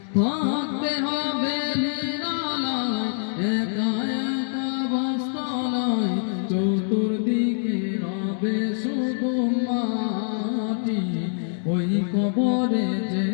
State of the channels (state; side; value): silent; right; digital silence